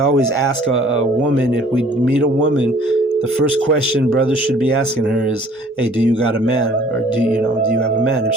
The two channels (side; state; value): both; normal; correlation 0.54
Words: ask a woman, if we meet a woman, the first question brothers should be asking her is, hey, do you got a man? Or do you have a man? If